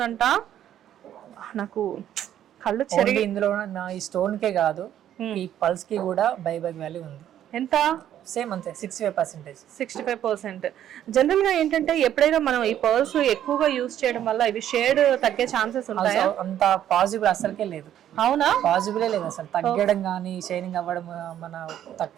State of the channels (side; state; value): left; quieter; 11.0 dB